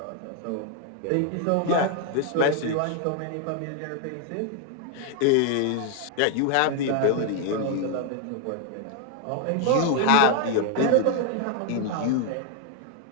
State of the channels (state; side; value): different; both; correlation 0.00